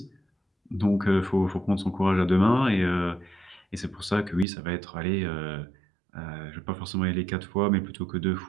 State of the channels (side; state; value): left; drops out; at 4.5 s